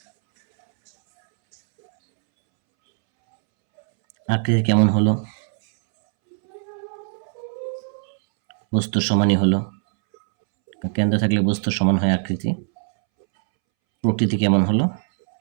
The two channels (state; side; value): silent; left; 65 dB below the other